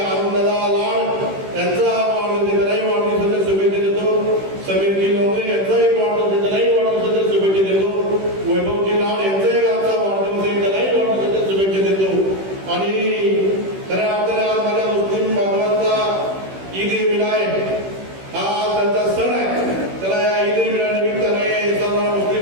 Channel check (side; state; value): left; late; 16 ms